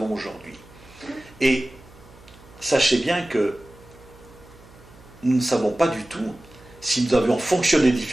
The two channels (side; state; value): right; noise; hum, 23 dB below the sound